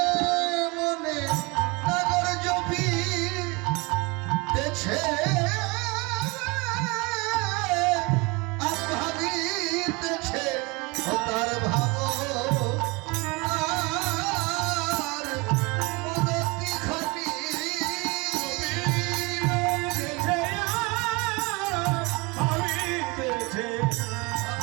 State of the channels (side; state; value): left; quieter; 26.6 dB